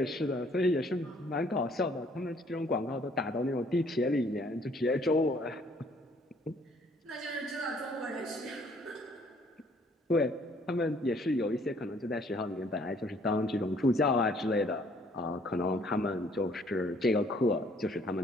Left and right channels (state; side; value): normal; both; correlation 0.61